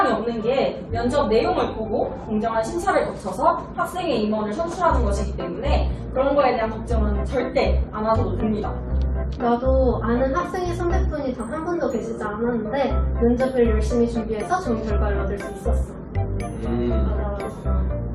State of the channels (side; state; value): both; identical; correlation 1.00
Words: 없는 게 면접 내용을 보고 공정한 심사를 거쳐서 학생의 임원을 선출하는 것이기 때문에 그런 거에 대한 걱정은 절대 안 하셔도 됩니다. 나도 아는 학생의 선배분이 단 한 분도 계시지 않았는데 면접을 열심히 준비해서 좋은 결과를 얻을 수 있었어. 맞아.